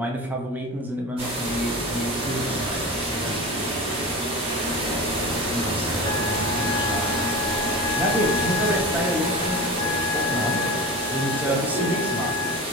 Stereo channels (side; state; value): both; normal; correlation 0.30